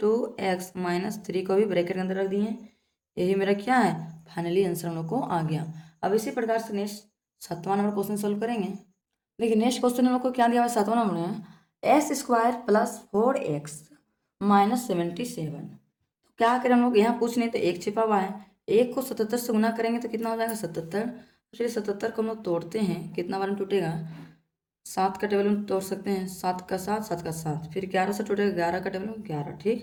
- 3 को भी ब्रैकेट के अंदर रख दिए। यही मेरा क्या है, फाइनली आंसर हम लोग को आ गया। अब इसी प्रकार से नेक्स्ट 7वां नंबर क्वेश्चन सोल्व करेंगे। देखिए नेक्स्ट क्वेश्चन हम लोग को क्या दिया हुआ है, 7वां नंबर में, s² + 4x - 77, तो क्या करें हम लोग, यहाँ कुछ नहीं तो एक छिपा हुआ है, एक को 77 से गुना करेंगे तो कितना हो जाएगा, 77, चलिए 77 को हम लोग तोड़ते हैं, कितना बार में टूटेगा, 7 का टेबल में तोड़ सकते हैं, 7 का 7, 7 का 7, फिर 11 से टूटेगा, 11 का टेबल में 11,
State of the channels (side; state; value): both; identical; correlation 1.00